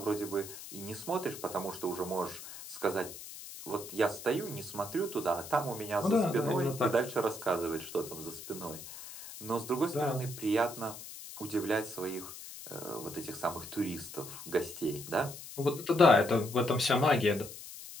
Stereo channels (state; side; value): noise; left; hiss, 12 dB below the sound